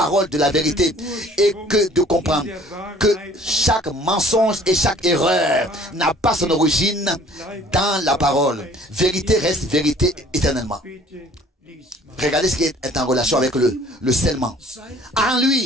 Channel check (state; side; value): normal; both; correlation 0.53